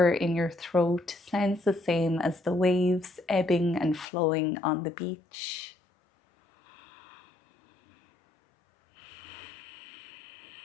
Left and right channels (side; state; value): right; drops out; at 4.0 s